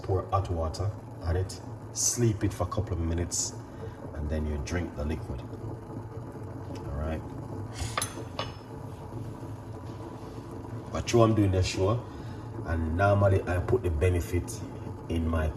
pour hot water on it, sleep it for a couple of minutes, and then you drink the liquid. All right. But I'm doing the show, and normally I put the benefit in my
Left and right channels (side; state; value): both; identical; correlation 1.00